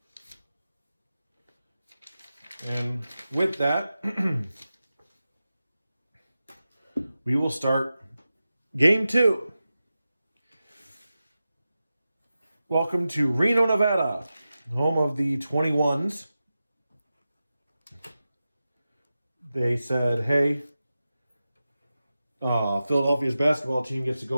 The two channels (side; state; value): both; inverted; correlation -0.93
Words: And with that, we will start Game 2. Welcome to Reno, Nevada, home of the 21s. They said, hey, Philadelphia's basketball team gets to